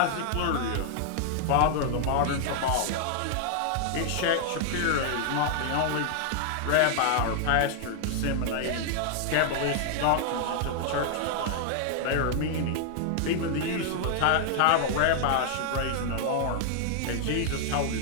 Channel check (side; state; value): both; different; correlation -0.01